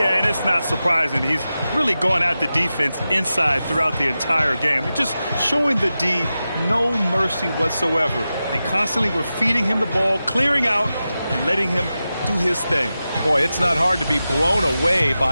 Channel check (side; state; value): both; inverted; correlation -0.93